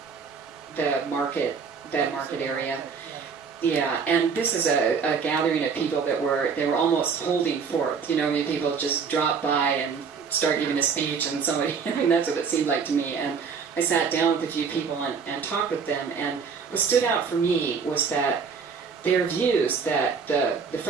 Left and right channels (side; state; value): left; quieter; 5.8 dB